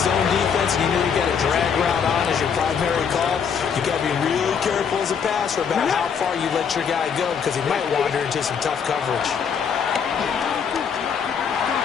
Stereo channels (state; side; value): quieter; right; 6.9 dB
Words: defense and you know you got a drag route on as your primary call, you got to be really careful as a passer about how far you let your guy go because he might wander into some tough coverage.